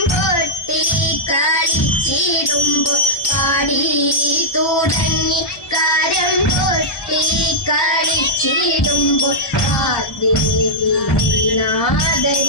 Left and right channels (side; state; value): right; late; 1.2 ms